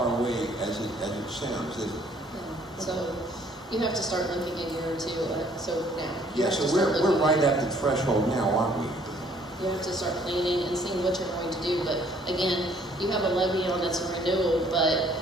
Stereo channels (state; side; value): normal; both; correlation 0.61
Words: away as it sounds, is it? No. So you have to start looking a year or two. So now. Yeah. So we're right at the threshold now, aren't we? You have to start planning and seeing what you're going to do. But again, you have a levy on that's a renewal, but